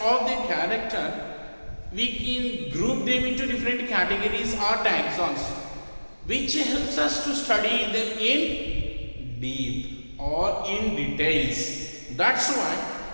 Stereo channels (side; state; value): both; inverted; correlation -1.00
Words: the character, we can group them into different categories or taxons, which helps us to study them in deep or in details. That's